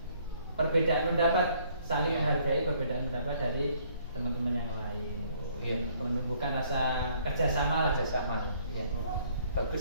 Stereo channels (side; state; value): both; inverted; correlation -0.63